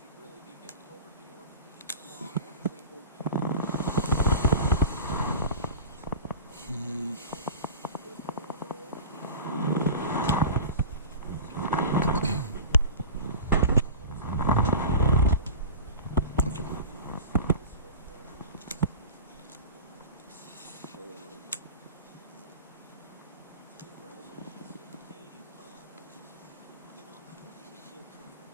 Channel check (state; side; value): inverted; both; correlation -0.34